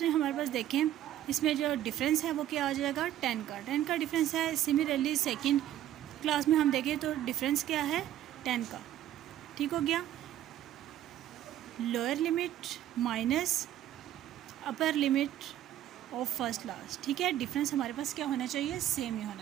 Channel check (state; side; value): quieter; left; 12.3 dB